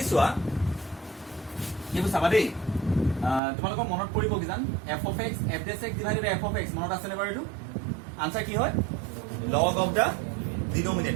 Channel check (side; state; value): left; drops out; at 3.4 s